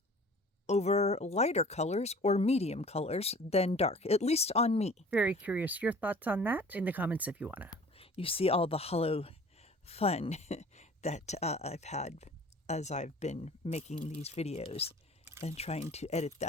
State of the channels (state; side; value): normal; both; correlation 0.46